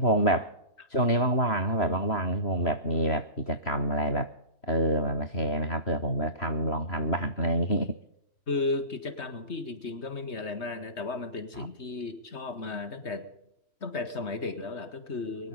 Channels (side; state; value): right; late; 3.2 ms